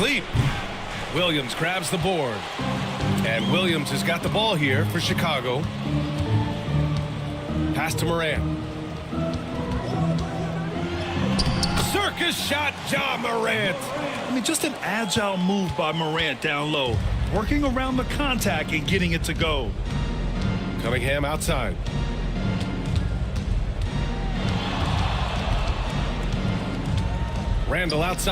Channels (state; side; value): identical; both; correlation 1.00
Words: Williams grabs the board. And Williams has got the ball here for Chicago. Pass to Morant. Circus shot, Ja Morant. I mean, just an agile move by Morant down low. Working around the contact and getting it to go. Cunningham outside. Randall